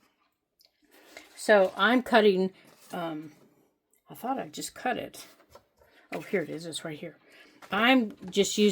So, I'm cutting, I thought I just cut it. Oh, here it is, it's right here. I'm just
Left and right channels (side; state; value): both; identical; correlation 1.00